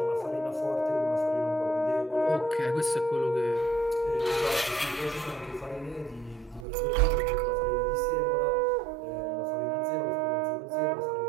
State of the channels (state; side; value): drops out; left; at 6.7 s